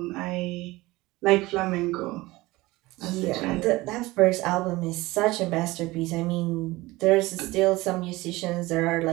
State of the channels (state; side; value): quieter; left; 20.2 dB